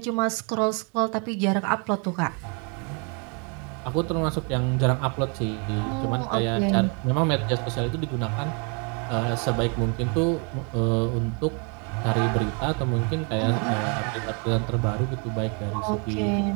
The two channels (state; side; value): quieter; left; 35.4 dB